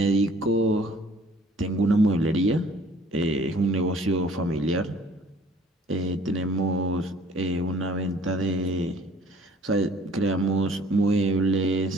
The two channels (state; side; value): normal; both; correlation 0.54